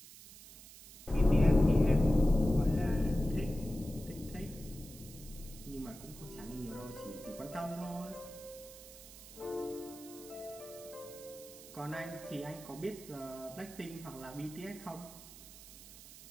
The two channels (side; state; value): right; noise; hiss, 17 dB below the sound